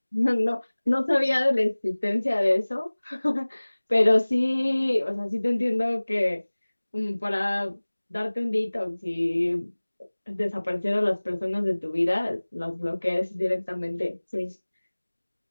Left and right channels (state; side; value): inverted; both; correlation -1.00